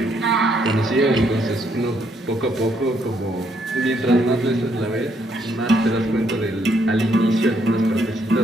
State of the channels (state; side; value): normal; both; correlation 0.72